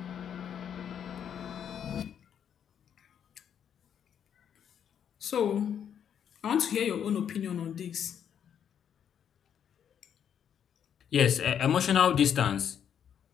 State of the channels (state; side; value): quieter; right; 8.6 dB